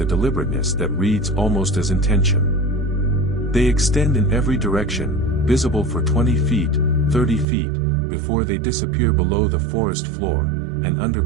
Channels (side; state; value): left; drops out; at 7.5 s